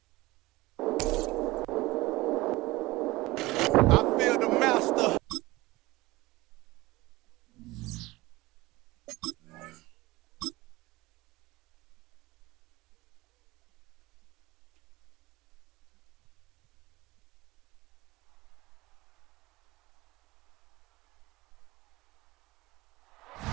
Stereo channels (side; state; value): left; quieter; 20.2 dB